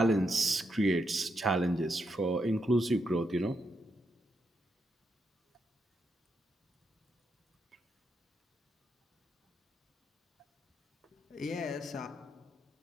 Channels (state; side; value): normal; both; correlation 0.81